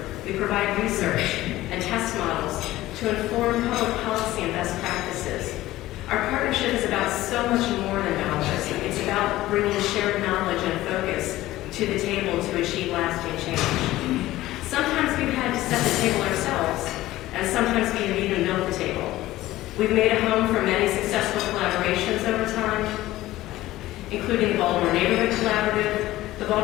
We provide research and test models to inform public policy and best practices. Our partnership is about so much more than dollars. It's about bringing shared knowledge and focus to the table to achieve lasting change. Sometimes we've had to set the table ourselves, and sometimes we have even built the table. We've made a home for many successful collaborations over time, including the Baltimore Neighborhood Collaborative, the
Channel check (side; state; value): right; quieter; 16.2 dB